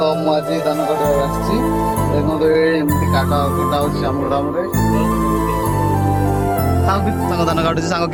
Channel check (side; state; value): left; noise; hum, 25 dB below the sound